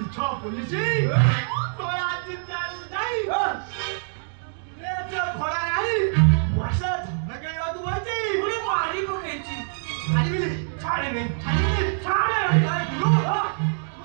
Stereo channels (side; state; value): left; silent; digital silence